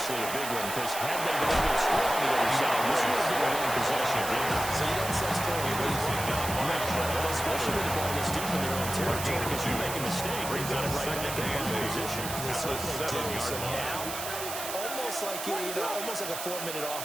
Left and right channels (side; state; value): right; noise; hiss, 6 dB below the sound